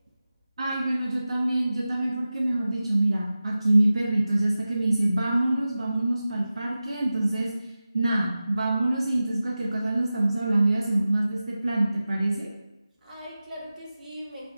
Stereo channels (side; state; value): both; inverted; correlation -0.95